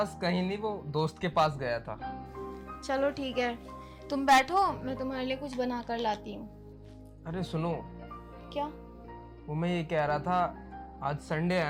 कहीं नहीं, वो दोस्त के पास गया था। चलो ठीक है, तुम बैठो, मैं तुम्हारे लिए कुछ बना कर लाती हूँ। अरे सुनो, क्या? वो मैं ये कह रहा था, आज संडे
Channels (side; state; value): both; identical; correlation 1.00